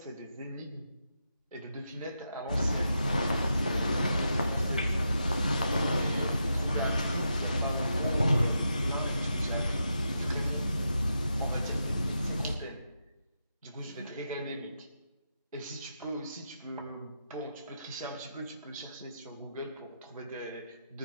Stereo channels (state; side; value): inverted; both; correlation -0.86